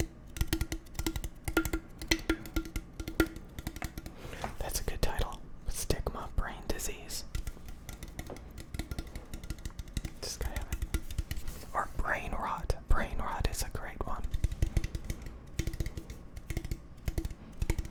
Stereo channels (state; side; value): identical; both; correlation 1.00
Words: That's a good title. Stigma, brain disease. Just gotta have it. Or brain rot. Brain rot is a great one.